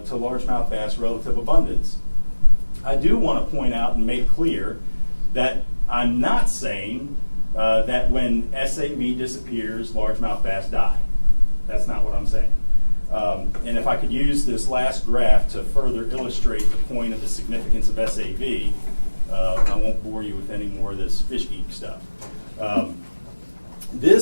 largemouth bass relative abundance. I do want to point out and make clear that I'm not saying that when SAV disappears, largemouth bass die. That's not what I'm saying. And if I could use this last graph to further illustrate the point of the significance of SAV, I won't bore you with any more of this fish geek stuff.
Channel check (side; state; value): both; inverted; correlation -1.00